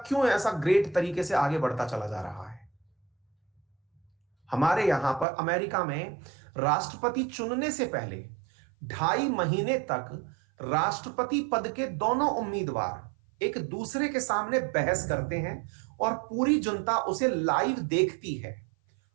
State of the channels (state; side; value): drops out; left; at 5.2 s